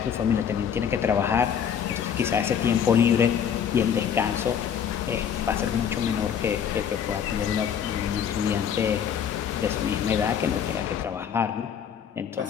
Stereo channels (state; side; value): quieter; right; 8.1 dB